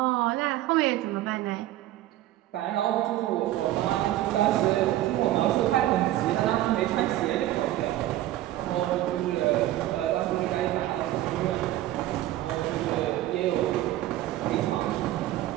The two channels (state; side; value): quieter; left; 14.6 dB